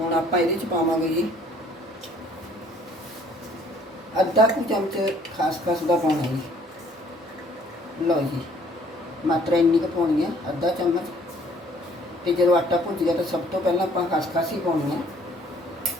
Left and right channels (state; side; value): normal; both; correlation 0.59